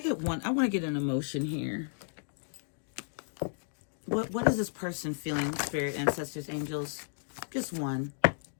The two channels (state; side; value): silent; right; digital silence